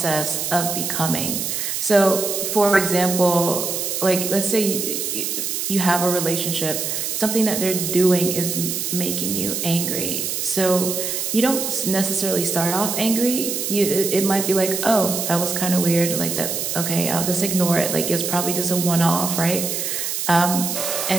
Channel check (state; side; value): noise; right; hiss, 2 dB below the sound